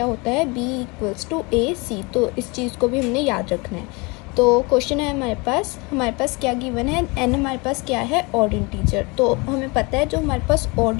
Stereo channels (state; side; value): quieter; right; 27.4 dB